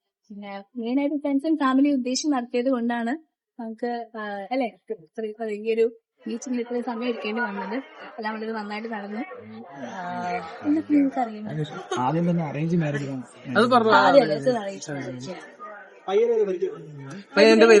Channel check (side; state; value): both; identical; correlation 1.00